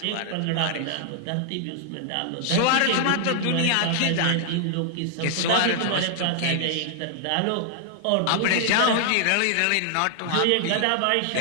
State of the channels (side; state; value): both; different; correlation 0.00